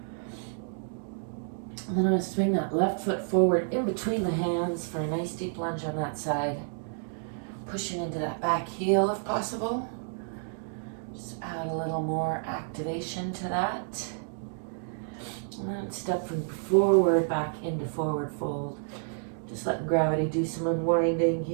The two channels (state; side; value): silent; left; digital silence